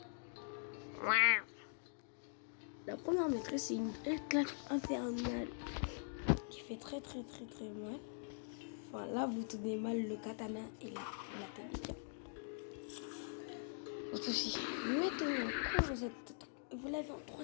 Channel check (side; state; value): right; silent; digital silence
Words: La première maîtrise, c'est une claque infernale qui fait très mal. Enfin, là, vous tenez mal le katana et la télé. Autre aussi. Maintenant, quand vous l'avez en